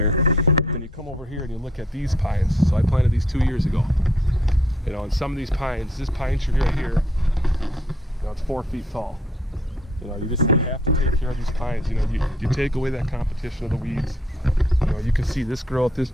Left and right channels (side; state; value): both; normal; correlation 0.65